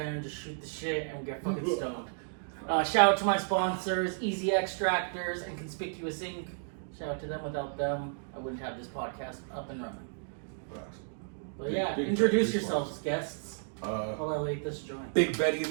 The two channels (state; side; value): silent; left; digital silence